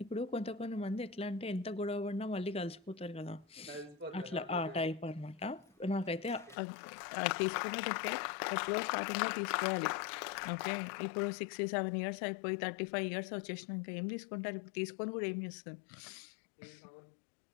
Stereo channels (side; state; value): right; drops out; at 6.6 s